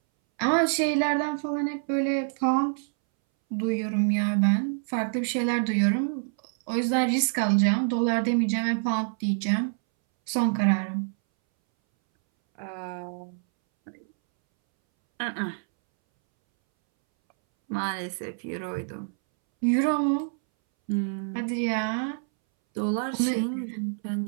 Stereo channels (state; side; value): silent; left; 60 dB below the other